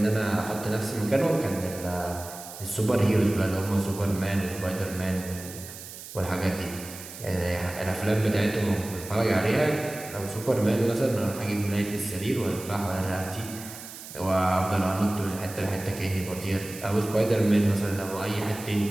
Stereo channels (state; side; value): noise; right; hiss, 13 dB below the sound